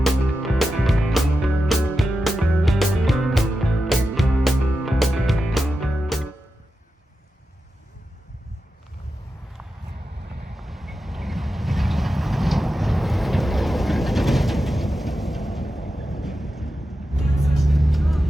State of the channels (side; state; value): both; normal; correlation 0.91